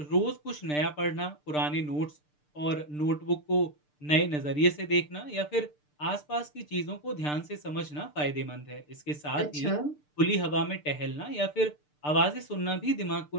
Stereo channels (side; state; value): right; late; 6.7 ms